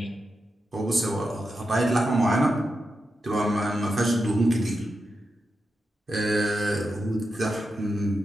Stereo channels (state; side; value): normal; both; correlation 0.88